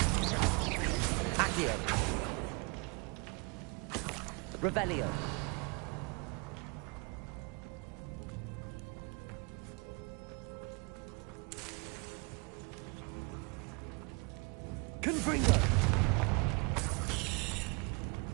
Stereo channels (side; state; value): left; quieter; 30.6 dB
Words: Accio! What's going on with them? Revelio! Confringo!